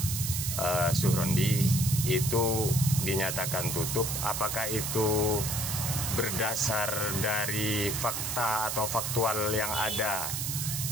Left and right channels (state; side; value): noise; right; hiss, 2 dB below the sound